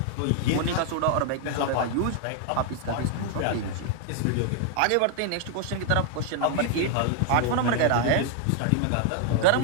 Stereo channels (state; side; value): different; both; correlation 0.00